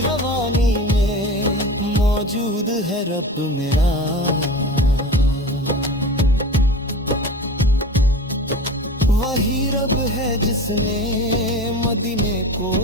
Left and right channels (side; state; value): both; normal; correlation 0.33